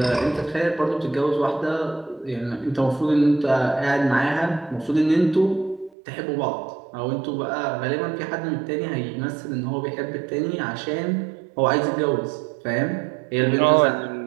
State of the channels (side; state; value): left; drops out; at 5.9 s